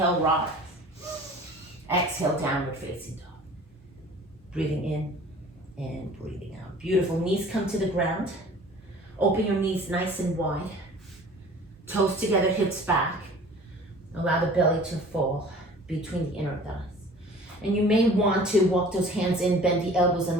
rise. Exhale, downward facing dog. Breathing in and breathing out. Beautiful. Knees come to the ground. Open your knees nice and wide. Toes together, hips back. Allow the belly to fall between the inner thighs. And you may want to walk those hands in, bend the elbows,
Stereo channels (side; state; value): both; normal; correlation 0.46